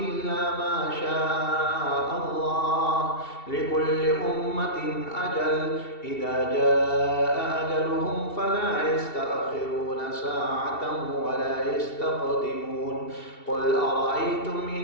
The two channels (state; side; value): late; right; 2.7 ms